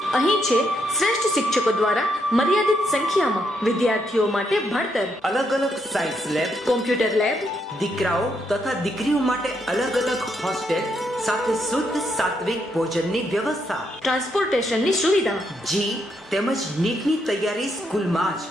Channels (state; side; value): normal; both; correlation 0.77